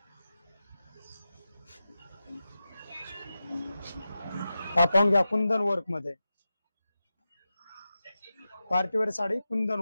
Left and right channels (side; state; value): both; inverted; correlation -0.92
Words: पाहून घ्या कुंदन वर्क मध्ये पार्टीवेअर साडी कुंदन